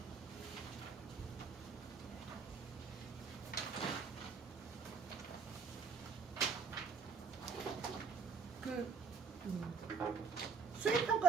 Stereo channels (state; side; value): quieter; left; 5.1 dB